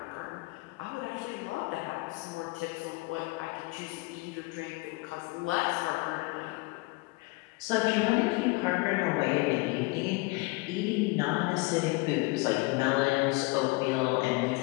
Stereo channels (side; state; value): right; quieter; 24.8 dB